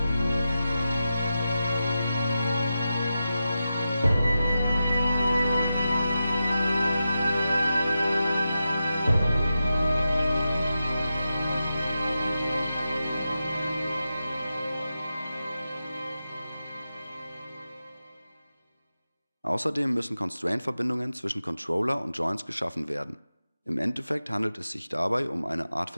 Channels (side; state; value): both; inverted; correlation -0.91